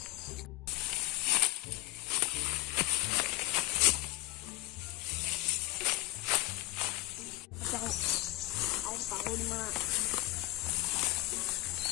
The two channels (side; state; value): right; quieter; 19.8 dB